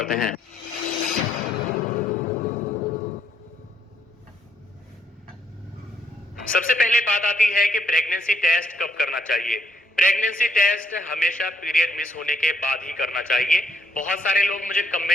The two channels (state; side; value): normal; both; correlation 0.71